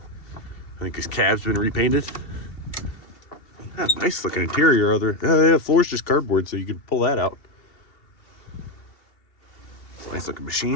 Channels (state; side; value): late; right; 2.7 ms